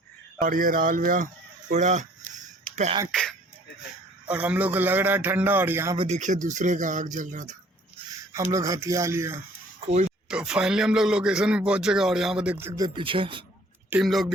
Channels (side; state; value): both; normal; correlation 0.56